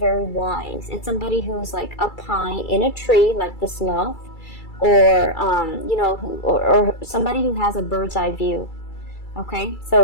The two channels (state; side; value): late; right; 2.3 ms